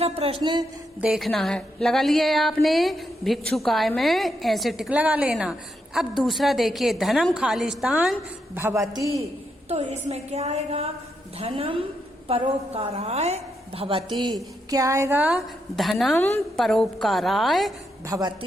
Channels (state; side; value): normal; both; correlation 0.81